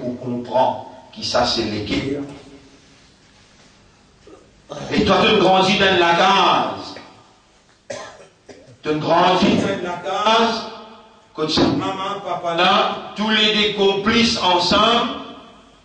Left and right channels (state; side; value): identical; both; correlation 1.00